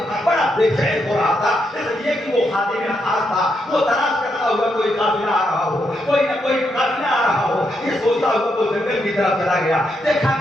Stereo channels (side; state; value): both; normal; correlation 0.80